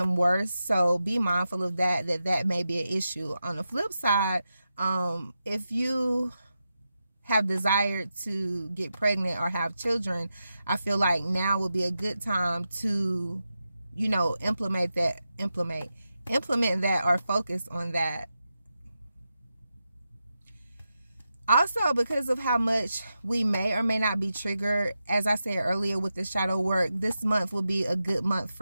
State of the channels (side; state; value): both; inverted; correlation -0.89